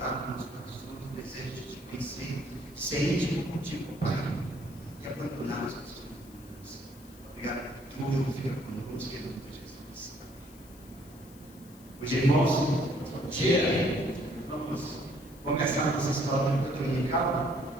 nos corações o desejo de te conhecer, ser íntimo contigo, Pai, e abandonar as pessoas. Obrigado por tudo, fica conosco, em nome de Jesus. Hoje, irmãos, bom dia. Vamos começar a nossa escola dominical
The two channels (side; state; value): left; noise; hiss, 23 dB below the sound